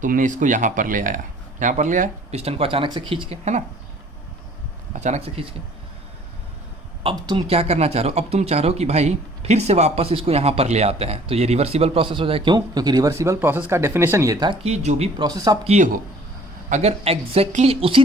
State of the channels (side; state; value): both; normal; correlation 0.54